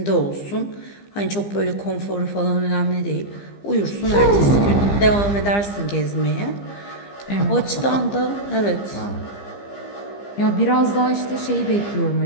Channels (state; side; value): late; right; 15 ms